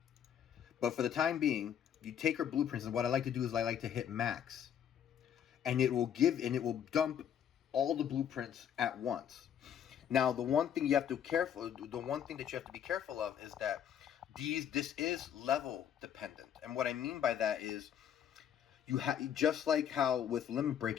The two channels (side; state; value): right; quieter; 9.1 dB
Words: But for the time being, you take her blueprints, and what I like to do is I like to hit max, and it will dump all the blueprints at once. Now, the one thing that you have to be careful of is that this is level dependent. And what I mean by that is, just like how with limit